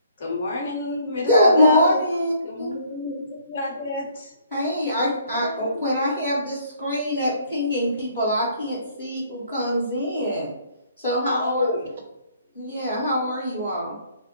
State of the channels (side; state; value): both; inverted; correlation -0.61